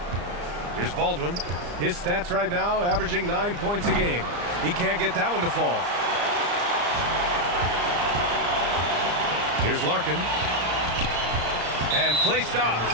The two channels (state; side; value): late; left; 34 ms